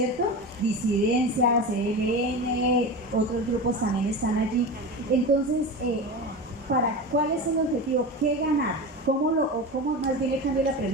Disidencias, ELN, otros grupos también están allí. Entonces, ¿cuál es el objetivo? ¿Qué ganar? ¿Cómo más bien le cambio la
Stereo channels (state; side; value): normal; both; correlation 0.26